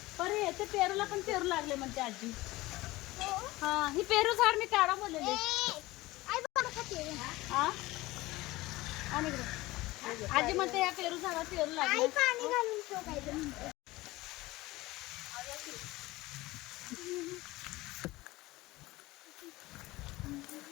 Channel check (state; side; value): quieter; right; 19.4 dB